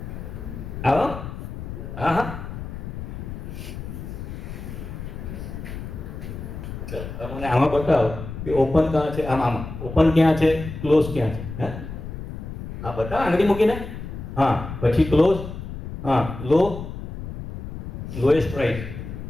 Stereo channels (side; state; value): left; noise; rumble, 9 dB below the sound